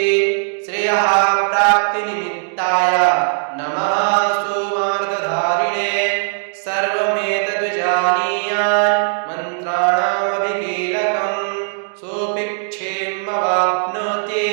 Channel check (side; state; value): left; silent; digital silence